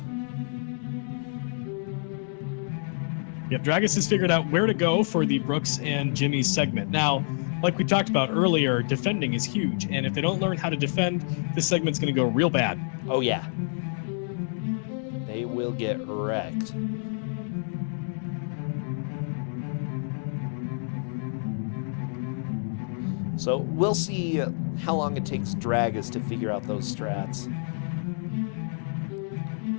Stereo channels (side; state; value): right; silent; digital silence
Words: Yep, Dragus has figured out where to go for the Brooks and Jimmy segment. Now, like we talked about earlier, defending is huge, and if they don't learn how to defend, this segment's going to go real bad. Oh yeah. They will get wrecked. So we'll see how long it takes Dragus to figure out those strats.